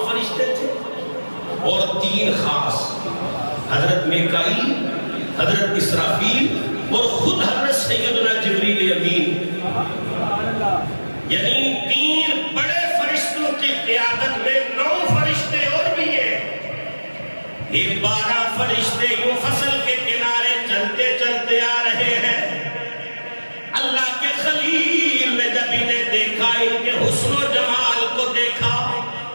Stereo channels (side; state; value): both; inverted; correlation -1.00